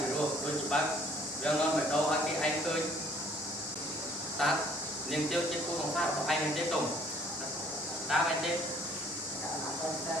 ីរោដូចច្បាស់យ៉ាងនាំមកដល់ឲ្យគេឯងឃើញតើនាងទាវជាគូសង្សាររបស់ឯងមែនទេតុងតើមែនទេ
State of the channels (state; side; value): normal; both; correlation 0.58